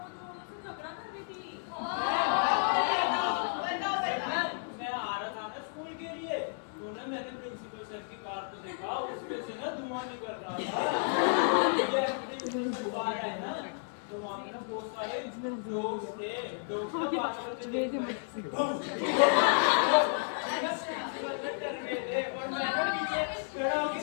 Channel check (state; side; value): silent; right; digital silence